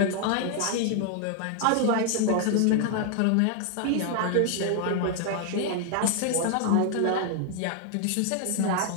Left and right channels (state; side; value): different; both; correlation 0.00